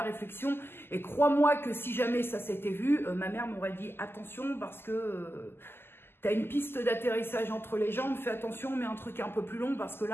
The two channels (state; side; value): late; right; 0.11 ms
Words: réflexion. Et crois-moi que si jamais ça s'était vu, ma mère m'aurait dit attention parce que... tu as une piste d'atterrissage entre les jambes, fais attention, mets un truc un peu plus long parce que